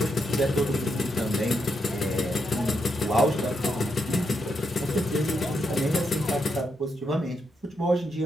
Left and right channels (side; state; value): both; normal; correlation 0.81